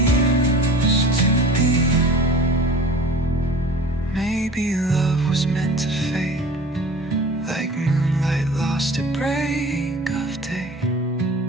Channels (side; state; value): both; normal; correlation 0.41